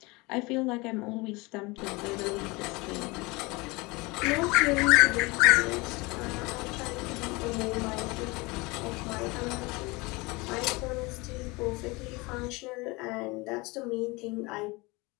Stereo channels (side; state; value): right; quieter; 24.8 dB